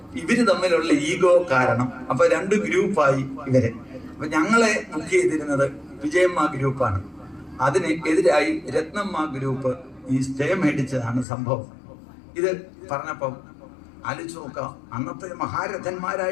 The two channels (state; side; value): drops out; right; at 11.2 s